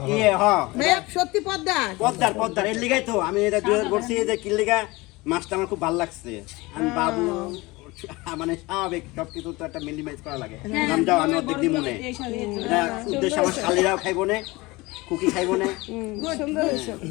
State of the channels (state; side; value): quieter; right; 22.4 dB